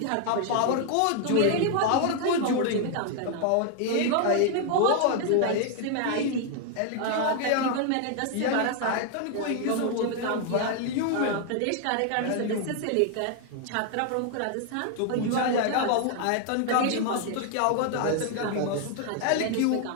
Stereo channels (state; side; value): different; both; correlation 0.00